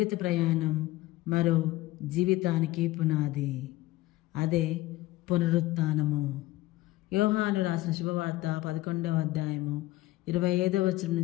ప్రయాణం మరో జీవితానికి పునాది, అదే పునరుత్థానము. యోహాను రాసిన శుభవార్త 11వ అధ్యాయము 25వ వచనం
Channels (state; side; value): quieter; right; 17.6 dB